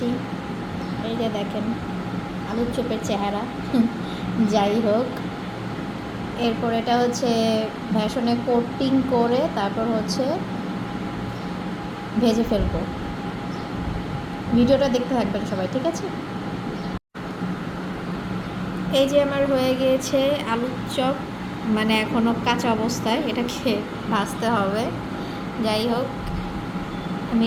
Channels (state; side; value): identical; both; correlation 1.00